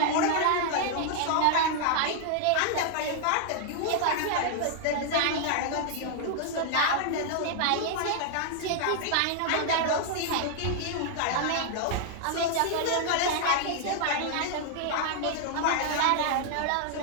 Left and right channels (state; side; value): different; both; correlation 0.00